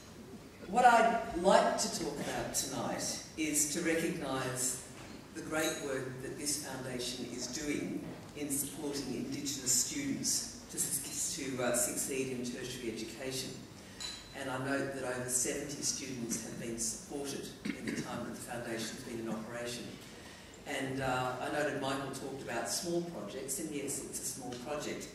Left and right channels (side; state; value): both; identical; correlation 1.00